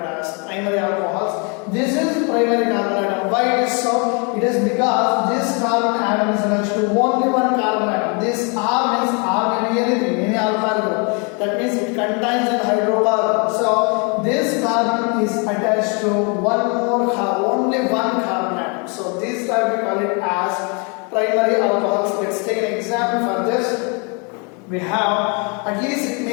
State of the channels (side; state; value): right; quieter; 34.1 dB